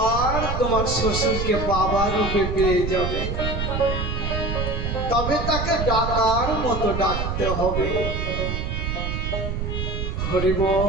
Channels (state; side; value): noise; right; rumble, 3 dB below the sound